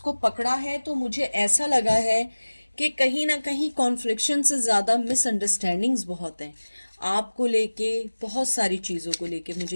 पकड़ा है तो मुझे ऐसा लगा है कि कहीं ना कहीं कॉन्फ्लिक्शन से ज़्यादा मिसअंडरस्टैंडिंग्स बहुत हैं आपको लेके, बहुत सारी चीज़ों को लेके।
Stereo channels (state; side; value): inverted; both; correlation -1.00